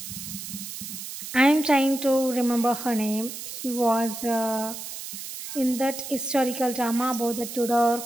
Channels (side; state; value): right; noise; hiss, 9 dB below the sound